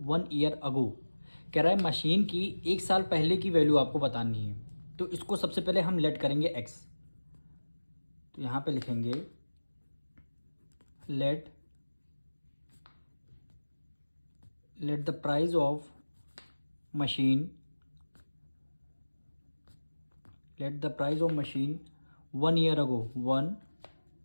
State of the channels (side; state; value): both; inverted; correlation -1.00